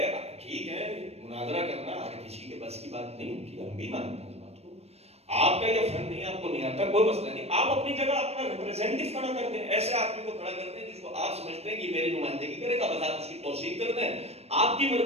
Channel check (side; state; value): left; late; 0.30 ms